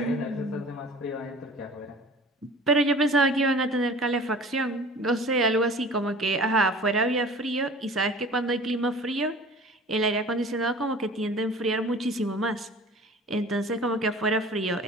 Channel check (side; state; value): both; normal; correlation 0.43